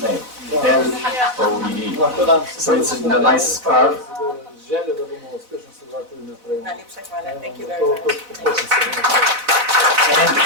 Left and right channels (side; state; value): left; late; 4.0 ms